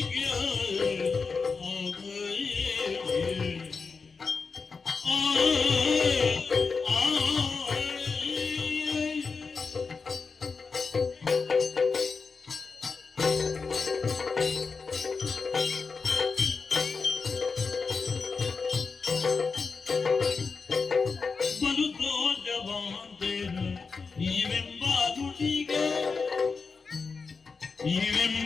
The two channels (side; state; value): right; quieter; 4.8 dB